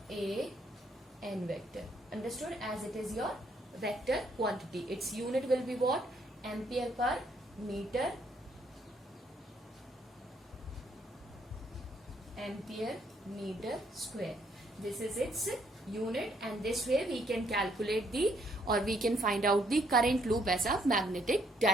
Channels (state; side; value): normal; both; correlation 0.70